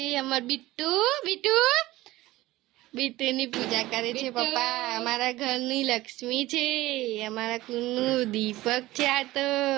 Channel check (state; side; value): quieter; left; 17.7 dB